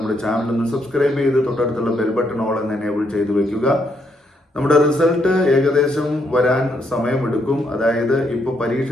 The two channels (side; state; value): both; normal; correlation 0.75